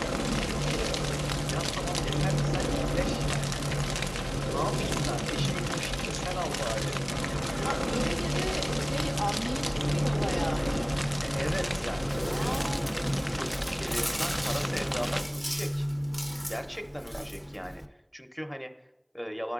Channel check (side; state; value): both; identical; correlation 1.00